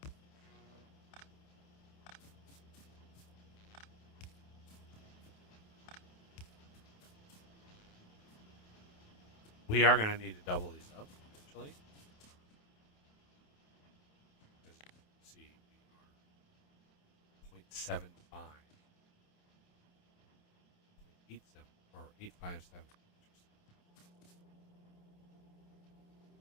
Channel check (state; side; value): late; right; 28 ms